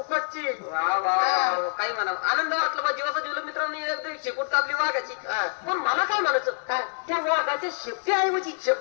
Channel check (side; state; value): right; silent; 61 dB below the other